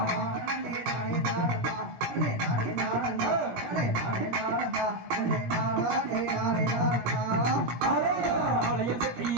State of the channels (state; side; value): late; left; 17 ms